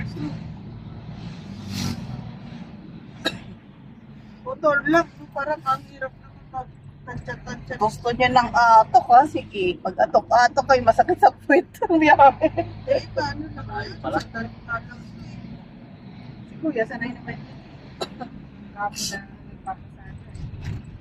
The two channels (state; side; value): identical; both; correlation 1.00